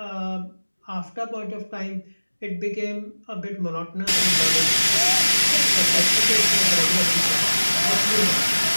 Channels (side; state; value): both; inverted; correlation -1.00